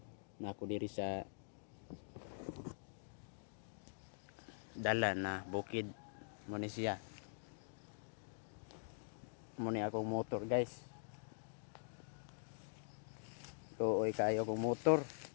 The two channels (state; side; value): silent; right; digital silence